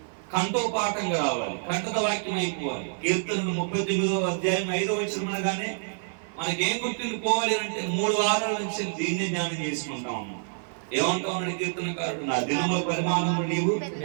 కంఠోపాఠంగా రావాలి, కంఠద వాక్యం అయిపోవాలి. కీర్తనలు 39వ అధ్యాయం 5వ వచనం అనగానే మనకేం గుర్తుండిపోవాలి అంటే 3 వారాల నుంచి దీన్నే ధ్యానం చేసుకుంటా ఉన్నాం. ఏమంటా ఉన్నాడు కీర్తనకారుడు, నా దినముల పరిమాణము నీవు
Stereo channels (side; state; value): left; silent; 60 dB below the other